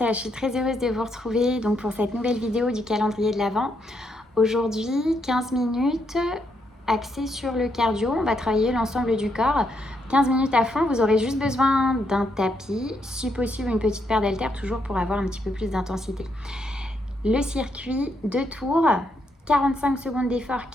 je suis très heureuse de vous retrouver donc pour cette nouvelle vidéo du calendrier de l'Avent. Aujourd'hui, 15 minutes axées sur le cardio, on va travailler l'ensemble du corps. 15 minutes à fond, vous aurez juste besoin d'un tapis, si possible une petite paire d'haltères, toujours pour avoir un petit peu plus d'intensité. Le circuit, 2 tours, 45 secondes d'effort,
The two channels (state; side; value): normal; both; correlation 0.77